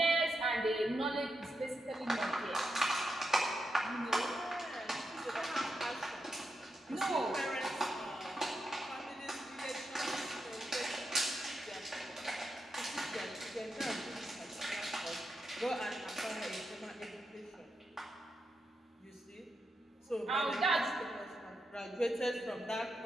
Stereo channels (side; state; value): both; normal; correlation 0.86